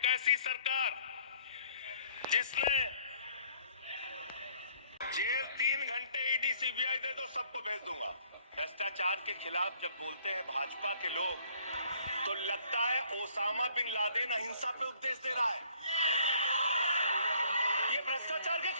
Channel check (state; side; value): inverted; both; correlation -0.60